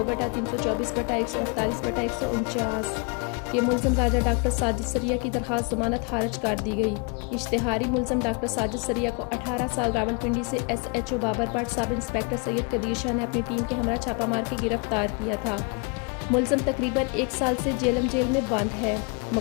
के मुलज़म राजा डॉक्टर साजिद सरिया की दरख्वास्त ज़मानत खारिज कर दी गई। इश्तिहारी मुलज़म डॉक्टर साजिद सरिया को 18 साल रावलपिंडी से SHO Babar Bhatt sub inspector Syed Qadeer Shah ने अपनी टीम के हमरा छापा मार के गिरफ्तार किया था। मुलज़म तकरीबन 1 साल से जेल में बंद है।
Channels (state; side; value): quieter; right; 33.2 dB